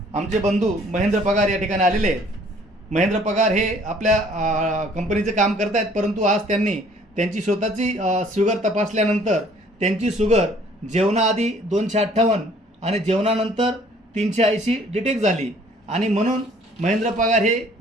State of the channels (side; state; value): both; normal; correlation 0.57